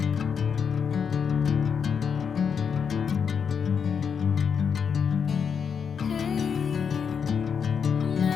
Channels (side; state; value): right; quieter; 6.7 dB